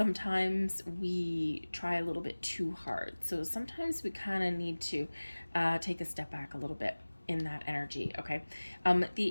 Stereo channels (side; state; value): both; inverted; correlation -1.00